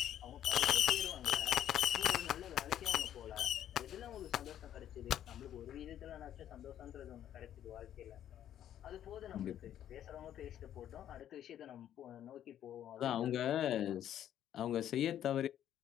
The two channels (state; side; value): quieter; right; 10.9 dB